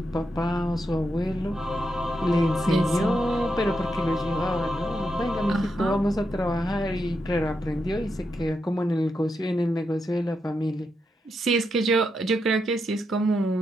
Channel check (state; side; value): normal; both; correlation 0.84